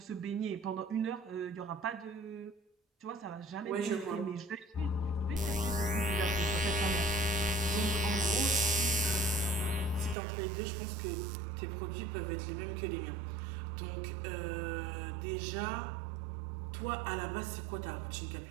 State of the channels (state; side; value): drops out; left; at 10.2 s